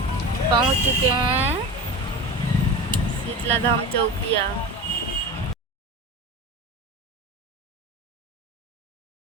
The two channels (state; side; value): normal; both; correlation 0.29